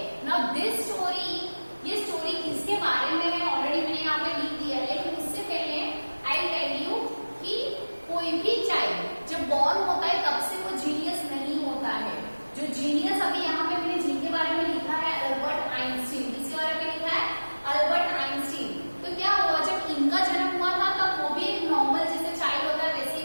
Now this story, ये story किसके बारे में है already मैंने यहाँ पे लिख दिया है, लेकिन उससे पहले I tell you कि कोई भी चाइल्ड जब बॉर्न होता है तब से वो जीनियस नहीं होता है. जो जीनियस अभी यहाँ पे मैंने जिनके बारे में लिखा है अल्बर्ट आइंस्टीन, किसके बारे में लिखा है अल्बर्ट आइंस्टीन. तो क्या हुआ जब इनका जन्म हुआ था तब वो भी एक नॉर्मल जैसे चाइल्ड होता है वैसे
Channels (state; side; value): inverted; both; correlation -1.00